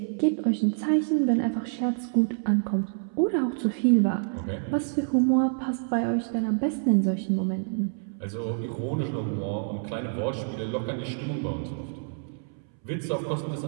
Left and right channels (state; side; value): silent; left; 60 dB below the other